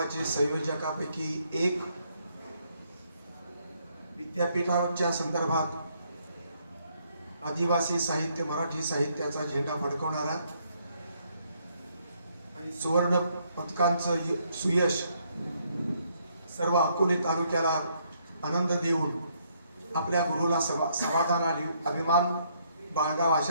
संयोजकापैकी एक, विद्यापीठाच्या संदर्भात आदिवासी साहित्य, मराठी साहित्याचा झेंडा फडकवणारा आणि सुवर्ण पदकांचं सुयश सर्व अकोले तालुक्याला आनंद देऊन आपल्या गुरुला समाधान आणि अभिमान बाळगावा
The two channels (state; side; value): inverted; both; correlation -0.71